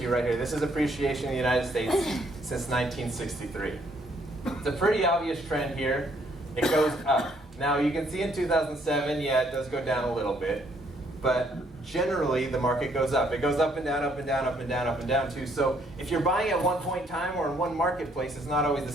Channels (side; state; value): both; normal; correlation 0.68